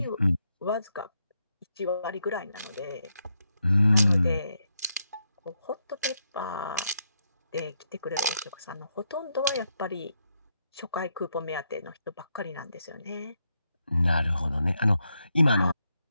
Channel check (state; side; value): inverted; both; correlation -0.81